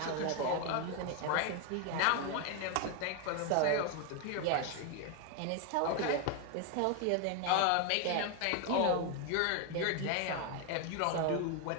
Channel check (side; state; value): both; different; correlation 0.01